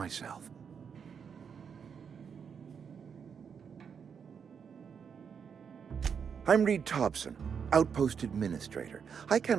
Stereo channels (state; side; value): quieter; left; 6.8 dB